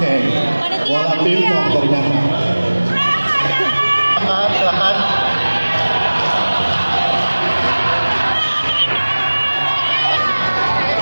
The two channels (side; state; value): both; inverted; correlation -1.00